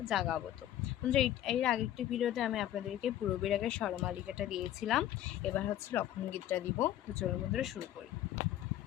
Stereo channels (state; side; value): quieter; right; 12.4 dB